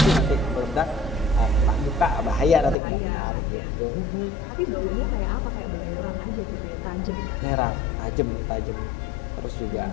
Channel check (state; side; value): drops out; right; at 2.8 s